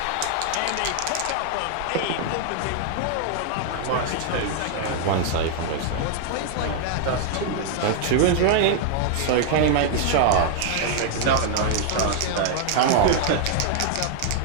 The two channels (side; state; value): both; different; correlation 0.00